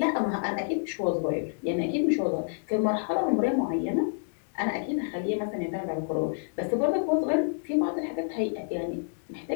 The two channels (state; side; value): silent; right; digital silence